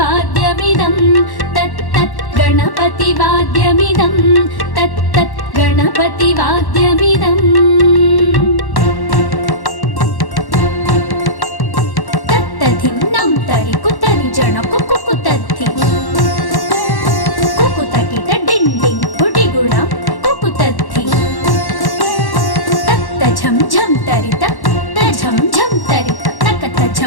तत्तत् गणपतिवाद्यमिदं तत्तत् गणपतिवाद्यमिदम् तत्तधिन्नं तरि कुतरि जण कुकुतद्धि कुकुतकिट डिण्डिं गुडिगुणं कुकुतद्धि तत्त झं झं तरित झं झं तरित तकत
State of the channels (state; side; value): late; right; 1.1 ms